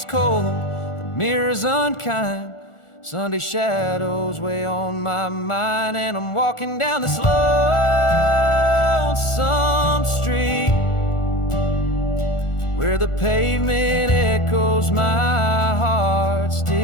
cold, the mirror's unkind. Sunday shadows weigh on my mind, and I'm walking down this lonesome street where the pavement echoes my heart's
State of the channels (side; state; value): right; late; 1.4 ms